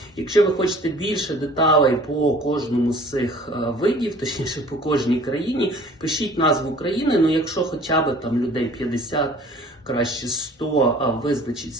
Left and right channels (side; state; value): both; normal; correlation 0.50